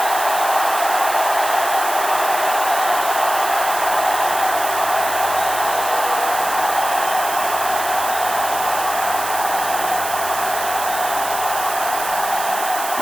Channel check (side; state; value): right; noise; hiss, 7 dB below the sound